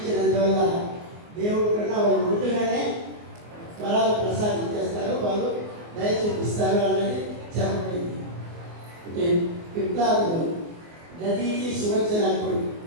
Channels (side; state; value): left; late; 24 ms